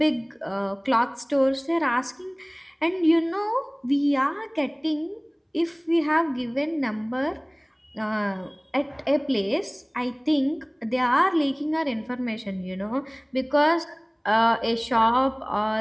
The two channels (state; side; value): identical; both; correlation 1.00